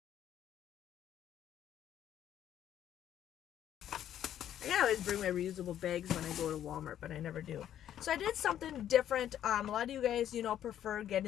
I always bring my reusable bags when I go to Walmart, but I never do. So I did something different. A lot of you guys, prefer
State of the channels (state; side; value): quieter; right; 10.9 dB